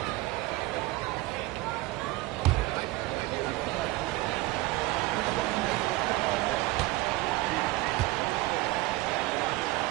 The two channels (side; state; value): left; quieter; 19.5 dB